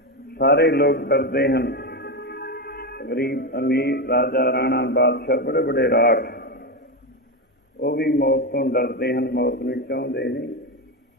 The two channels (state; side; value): normal; both; correlation 0.13